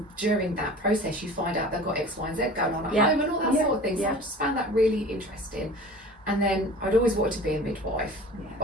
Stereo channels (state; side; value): normal; both; correlation 0.41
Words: during that process you find out they've got X, Y and Z going on at home and all that sort of thing. So I just found that really interesting. And then I'd always wanted to be a midwife,